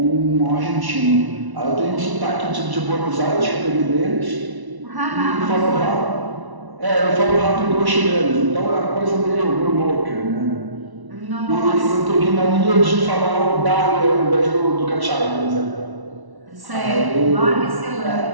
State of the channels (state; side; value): late; left; 1.1 ms